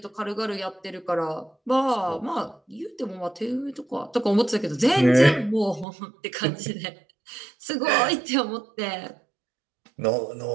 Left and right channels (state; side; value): drops out; left; at 5.9 s